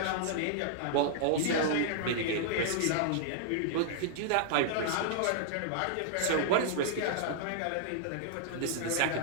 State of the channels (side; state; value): both; different; correlation -0.01